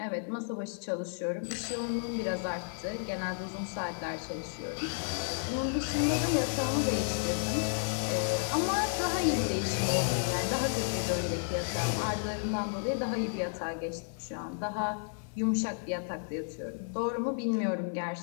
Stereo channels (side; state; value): right; silent; 56 dB below the other